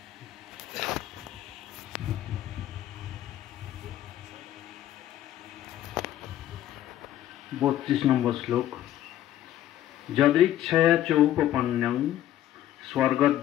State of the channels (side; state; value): right; quieter; 12.6 dB